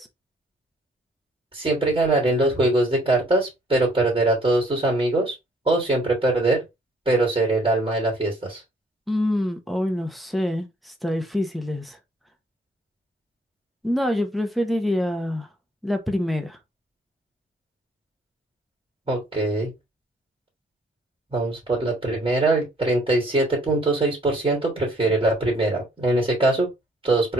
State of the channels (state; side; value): normal; both; correlation 0.62